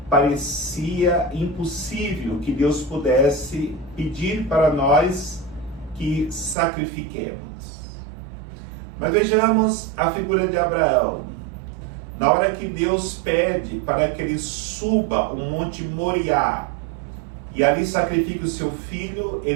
parecia impossível que Deus pudesse pedir para nós que sacrifiquemos. Mas vejamos a figura de Abraão. Na hora que Deus pede para que ele suba o Monte Moriá e ali sacrifique o seu filho,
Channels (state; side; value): drops out; left; at 6.6 s